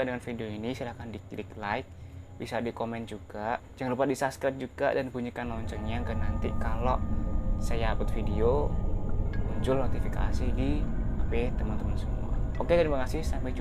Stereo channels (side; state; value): both; identical; correlation 1.00